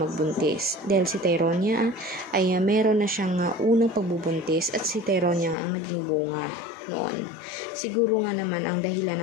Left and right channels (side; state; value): right; drops out; at 5.6 s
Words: Dahil si Tyronia ay meron na siyang unang pagbubuntis at si Tyronia ang naging bunga noon. Siguro nga naman ang dahilan